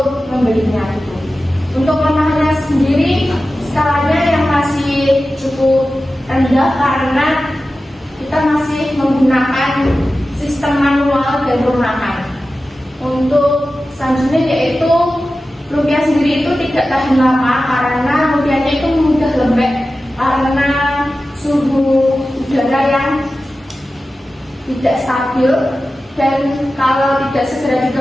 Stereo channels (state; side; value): normal; both; correlation 0.94